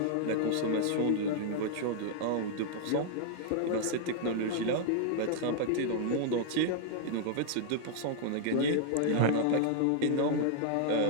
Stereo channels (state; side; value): different; both; correlation -0.01